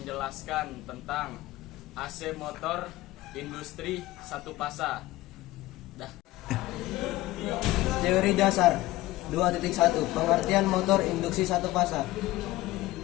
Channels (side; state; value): right; quieter; 17.8 dB